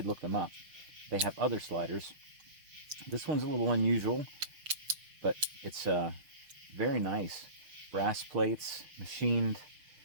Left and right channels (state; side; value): late; left; 6.3 ms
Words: look them up. They have other sliders. This one's a little unusual, but it's very nice. Brass plates, machined.